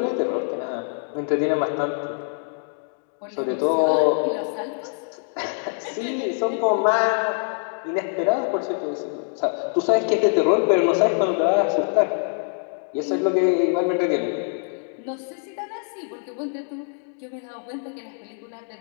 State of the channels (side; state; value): right; silent; 55 dB below the other